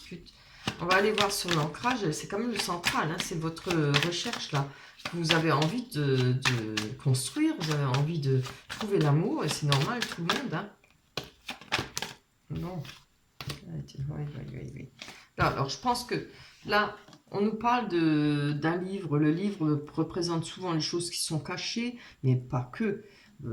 On va aller voir sur l'ancrage, c'est quand même le central, hein, c'est votre recherche là. Vous avez envie de construire, vous avez envie de trouver l'amour, et c'est normal, tout le monde, hein. Non. Oui. Alors, je pense que là, on nous parle d'un livre. Le livre représente souvent les choses qui sont cachées, mais pas que.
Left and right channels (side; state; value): both; identical; correlation 1.00